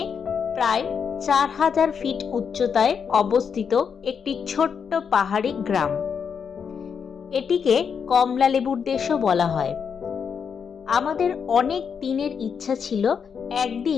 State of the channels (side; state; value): right; quieter; 6.7 dB